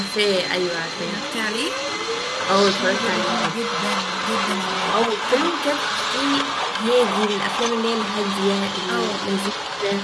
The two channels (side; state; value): both; identical; correlation 1.00